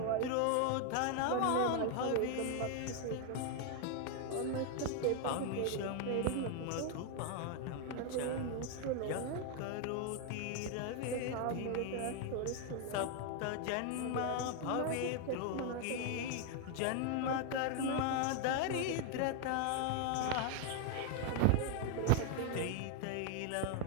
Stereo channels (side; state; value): both; different; correlation 0.00